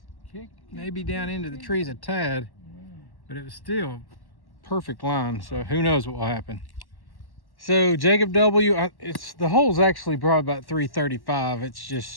maybe down into the trees a tad. But it was still perfect line, so who knows what will happen. So Jacob W, it's the hole's actually probably about 335. It's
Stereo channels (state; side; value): late; right; 1.1 ms